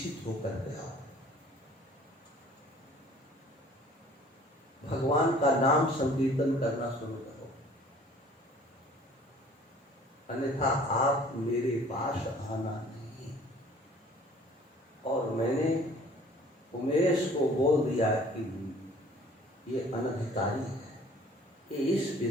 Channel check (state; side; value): normal; both; correlation 0.52